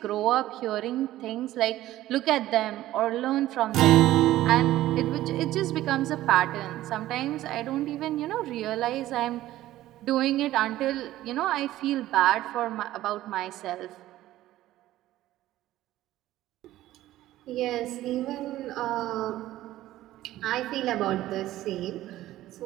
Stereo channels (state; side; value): quieter; left; 14.8 dB